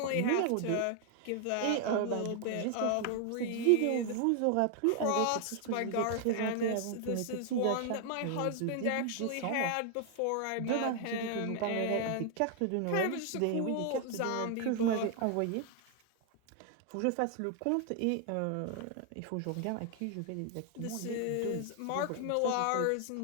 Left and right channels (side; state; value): both; different; correlation 0.00